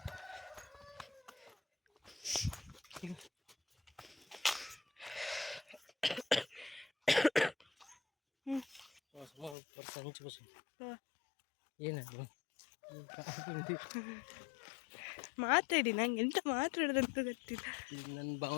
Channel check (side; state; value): right; drops out; at 9.6 s